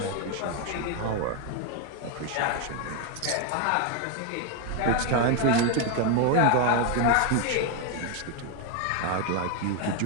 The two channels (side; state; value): both; different; correlation 0.01